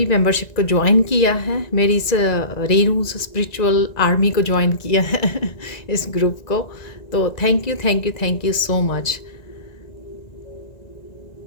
मेंबरशिप को ज्वाइन किया है, मेरी इस रेनू स्पिरिचुअल आर्मी को ज्वाइन किया है इस ग्रुप को, तो thank you thank you thank you so much.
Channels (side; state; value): right; late; 1.9 ms